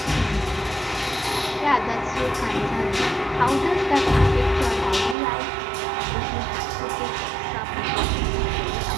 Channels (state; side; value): drops out; left; at 5.2 s